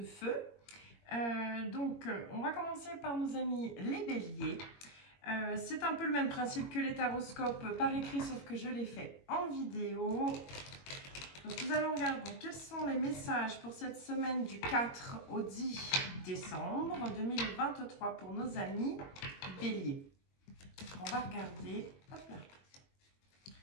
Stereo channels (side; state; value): right; late; 21 ms